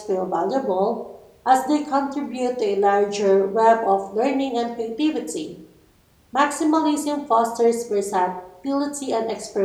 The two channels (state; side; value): identical; both; correlation 1.00